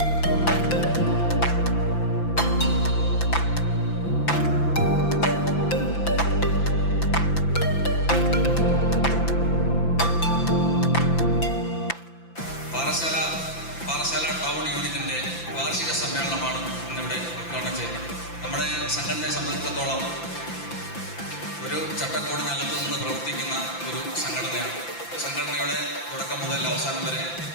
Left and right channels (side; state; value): right; late; 5.9 ms